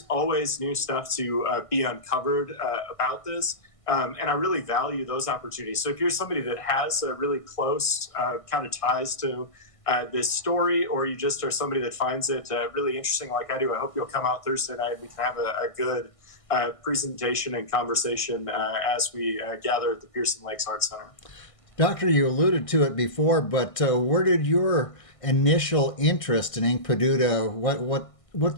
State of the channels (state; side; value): late; right; 1.6 ms